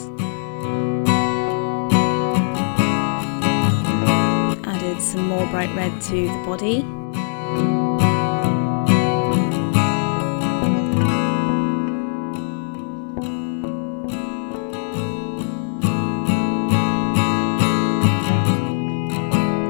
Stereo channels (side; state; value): right; silent; digital silence